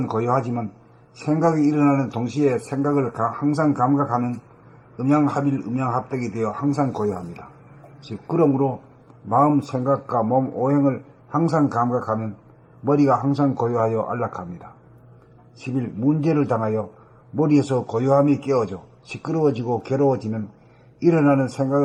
고요하지만 생각이 일어나는 동시에 생각을 항상 감각하는 음양합일 음양합백이 되어 항상 고요합니다. 즉 그러므로 마음 생각과 몸 오행을 항상 감각하면 머리가 항상 고요하여 안락합니다. 11. 문제를 당하여 머리에서 고요함이 깨어져 시끄러워지고 괴로워지면 일어나는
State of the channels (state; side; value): identical; both; correlation 1.00